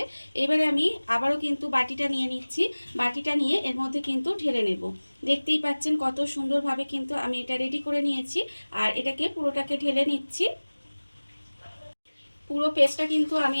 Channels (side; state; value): both; inverted; correlation -1.00